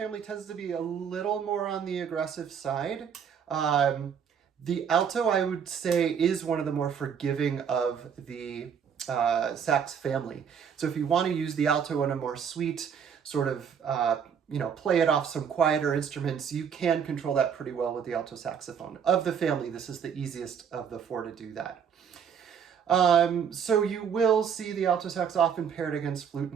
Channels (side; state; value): left; quieter; 7.5 dB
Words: tends to be a little more on the aggressive side. The alto, I would say, is one of the more forgiving of the sax family. So if you want to use the alto in a more sweet sort of, play it off some quieter instruments, you can control that pretty well with the alto saxophone. Of the family, this is the easiest of the 4 to do that. So you will see the alto sax often paired against flute